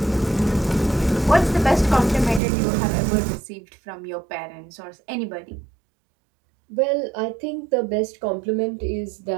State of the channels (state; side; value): drops out; left; at 2.4 s